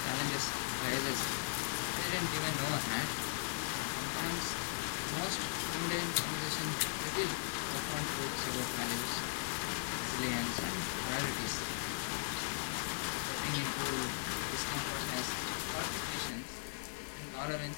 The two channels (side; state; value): right; silent; digital silence